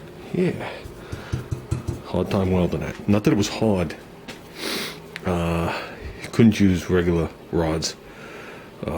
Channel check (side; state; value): both; identical; correlation 1.00